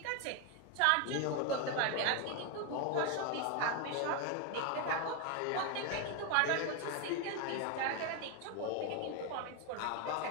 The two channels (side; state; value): both; different; correlation 0.01